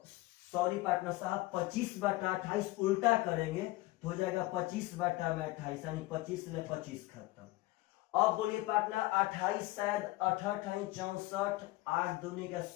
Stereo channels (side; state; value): right; quieter; 19.5 dB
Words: सॉरी पार्टनर साहब 25/28 उल्टा करेंगे तो हो जाएगा 25/28, यानी 25 से 25 खत्म। अब बोलिए पार्टनर 28 शायद 68 64, 8 दूनी का